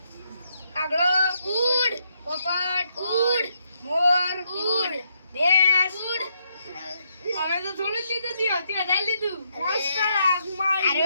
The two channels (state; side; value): inverted; both; correlation -0.77